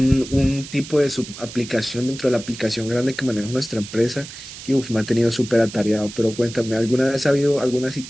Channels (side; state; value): right; noise; hiss, 13 dB below the sound